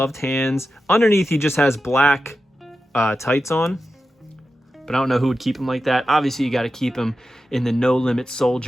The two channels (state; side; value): normal; both; correlation 0.91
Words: hands. Underneath, he just has black tights on, but I don't know who would keep him like that. Obviously, you got to keep him in the No Limit